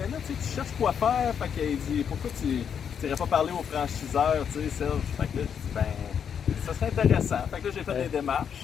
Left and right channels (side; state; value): right; quieter; 7.7 dB